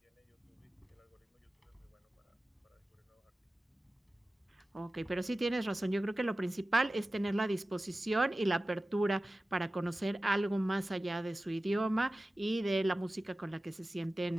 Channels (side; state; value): both; normal; correlation 0.96